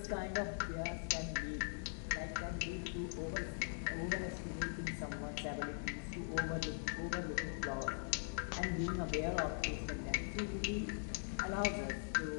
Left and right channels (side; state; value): right; silent; digital silence